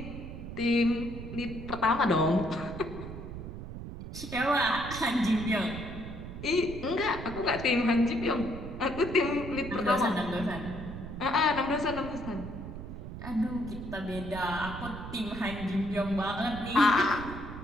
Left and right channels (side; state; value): right; noise; rumble, 9 dB below the sound